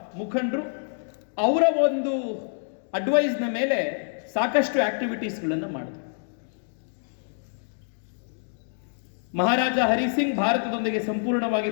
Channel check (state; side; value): silent; right; digital silence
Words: ಮುಖಂಡರು, ಅವರ ಒಂದು ಅಡ್ವೈಸ್ನ ಮೇಲೆ ಸಾಕಷ್ಟು ಆಕ್ಟಿವಿಟೀಸ್ಗಳನ್ನು ಮಾಡಿದ್ರು. ಮಹಾರಾಜ ಹರಿಸಿಂಗ್ ಭಾರತದೊಂದಿಗೆ ಸಂಪೂರ್ಣವಾಗಿ